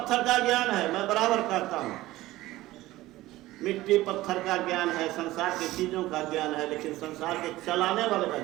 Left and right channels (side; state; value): left; quieter; 17.1 dB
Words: का ज्ञान है। मैं बराबर कहता हूँ, मिट्टी पत्थर का ज्ञान है, संसार की चीजों का ज्ञान है, लेकिन संसार के चलाने वाले का